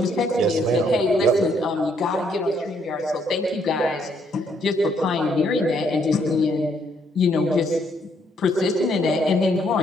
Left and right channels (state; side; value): normal; both; correlation 0.70